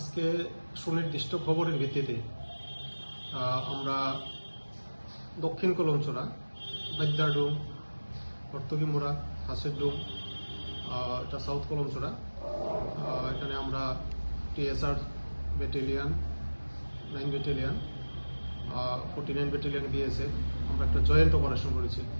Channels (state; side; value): inverted; both; correlation -1.00